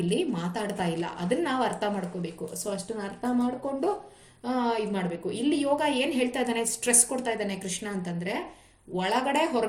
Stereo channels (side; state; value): both; identical; correlation 1.00